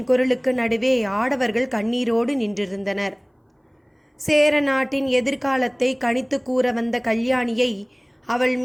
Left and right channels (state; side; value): identical; both; correlation 1.00